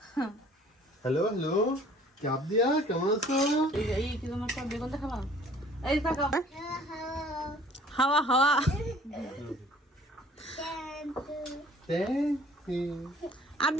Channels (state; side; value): normal; both; correlation 0.54